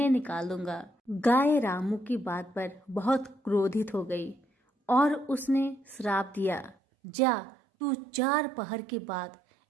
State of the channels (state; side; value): drops out; left; at 6.8 s